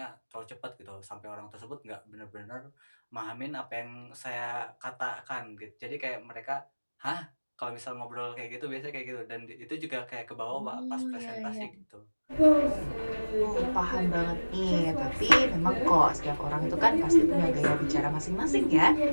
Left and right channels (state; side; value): inverted; both; correlation -1.00